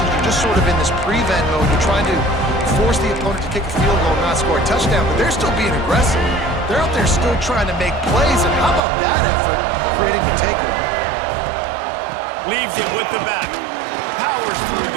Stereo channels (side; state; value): left; drops out; at 8.8 s